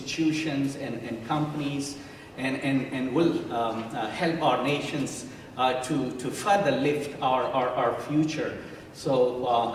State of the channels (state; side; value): identical; both; correlation 1.00